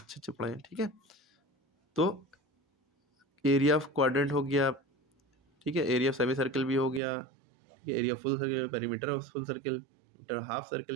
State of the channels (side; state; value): left; drops out; at 7.0 s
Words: अच्छे पढ़े हैं, ठीक है। तो एरिया ऑफ क्वाड्रेंट हो गया, ठीक है, एरिया ऑफ सेमी सर्कल भी हो गया, ठीक है, area full circle, perimeter of full circle, half